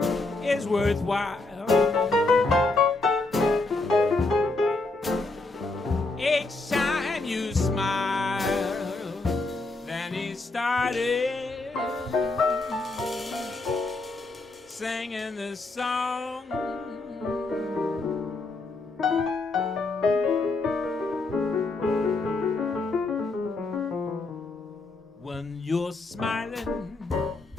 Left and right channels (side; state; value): right; quieter; 3.3 dB